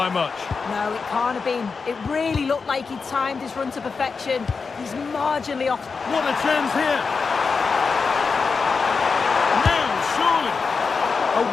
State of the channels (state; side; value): quieter; right; 5.0 dB